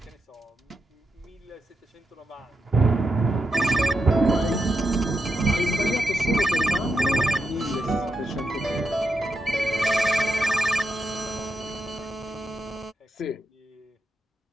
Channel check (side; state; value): both; normal; correlation 0.85